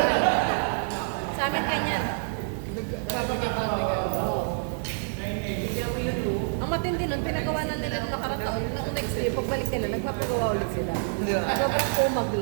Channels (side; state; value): left; silent; digital silence